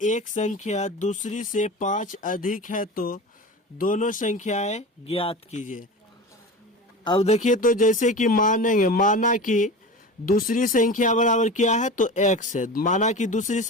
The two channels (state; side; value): normal; both; correlation 0.31